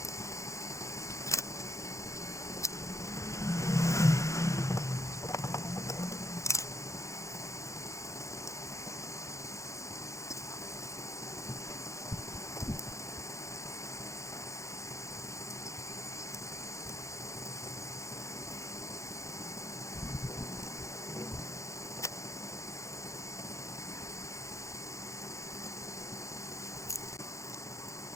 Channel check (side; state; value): right; late; 0.15 ms